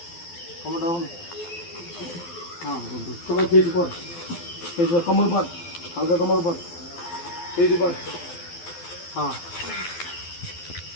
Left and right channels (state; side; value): late; right; 12 ms